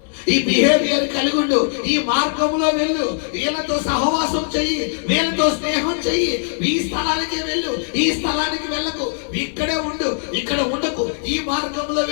ఈ బిహేవియర్ కలిగి ఉండు, ఈ మార్గంలో వెళ్ళు, వీళ్ళతో సహవాసం చెయ్యి, వీళ్ళతో స్నేహం చెయ్యి, ఈ స్థలానికి వెళ్ళు, ఈ స్థలానికి వెళ్ళకు, ఇక్కడే ఉండు, ఇక్కడ ఉండకు, ఈ మార్గంలో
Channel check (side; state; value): right; silent; digital silence